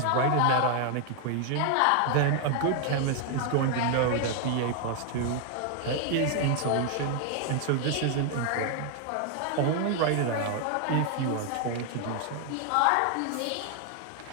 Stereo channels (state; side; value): different; both; correlation 0.00